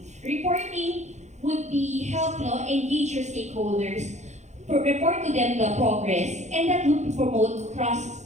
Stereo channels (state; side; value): late; left; 0.33 ms